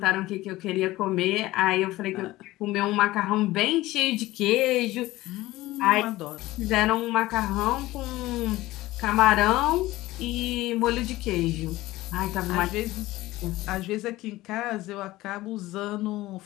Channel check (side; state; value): right; quieter; 17.7 dB